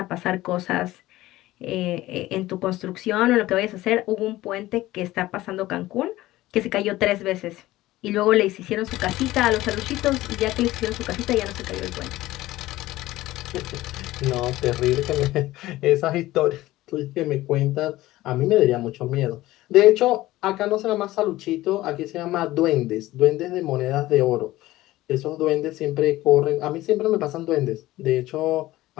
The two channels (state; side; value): quieter; right; 16.8 dB